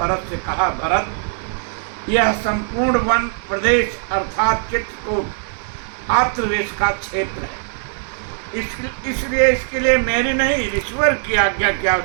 से कहा, भरत, यह संपूर्ण वन प्रदेश अर्थात चित्रकूट आत्रदेश का क्षेत्र है। इसलिए इसके लिए मेरी नहीं ईश्वर की आज्ञा की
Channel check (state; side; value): silent; left; 63 dB below the other